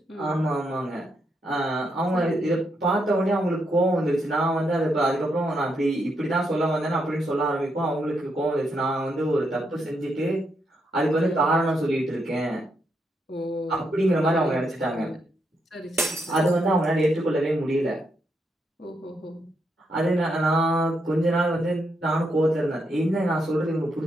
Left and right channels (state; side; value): normal; both; correlation 0.80